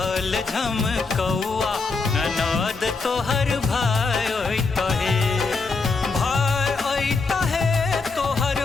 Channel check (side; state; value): right; quieter; 4.2 dB